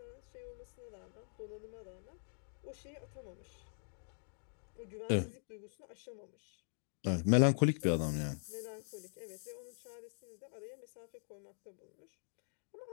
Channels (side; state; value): right; silent; digital silence